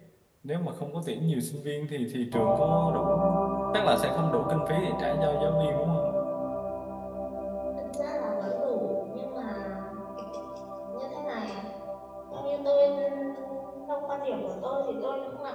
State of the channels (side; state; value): both; identical; correlation 1.00